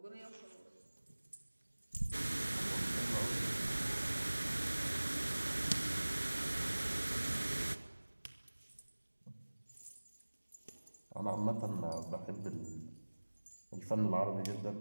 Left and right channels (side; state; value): both; inverted; correlation -1.00